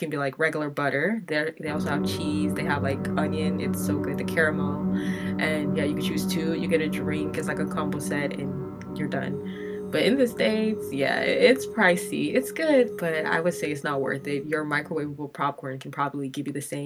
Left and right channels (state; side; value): identical; both; correlation 1.00